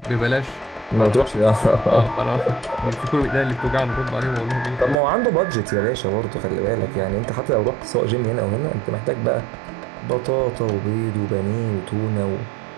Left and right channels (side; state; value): left; drops out; at 5.0 s